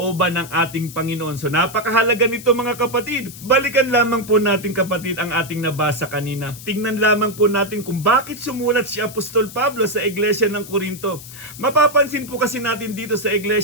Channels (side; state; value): left; noise; hiss, 15 dB below the sound